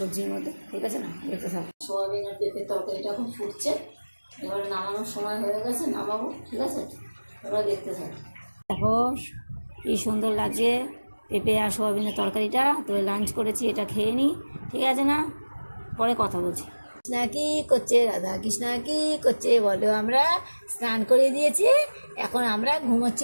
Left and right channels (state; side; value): inverted; both; correlation -1.00